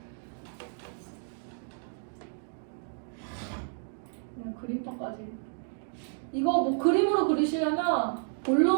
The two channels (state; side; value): silent; left; 57 dB below the other